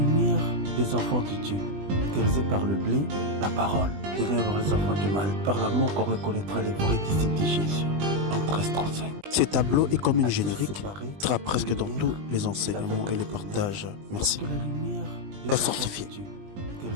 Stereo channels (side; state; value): left; late; 20 ms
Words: des enfants de Dieu caractérisé par le blé, la parole. Ténèbres les enfants du mal, par l'amour qu'on reconnaîtra les vrais disciples de Jésus. En 1335. Ce tableau est comme une générique, séparé, sera presque dans tous les enseignements et les partages. Merci. Que la lumière La sortie.